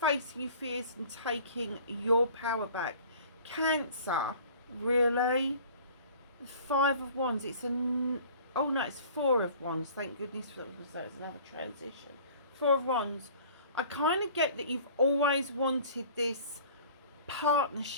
your fears and taking your power back, Cancer, really? 5 of Wands, it's oh no, it's 4 of Wands, thank goodness for that, because that was another transition. 4 of Wands. I kind of get that you've always wanted this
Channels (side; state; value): both; inverted; correlation -0.48